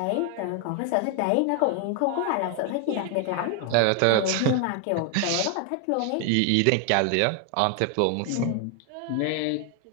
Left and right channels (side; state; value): both; different; correlation 0.00